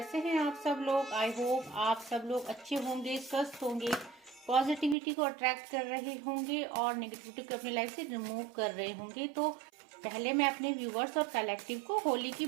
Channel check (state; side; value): drops out; left; at 5.0 s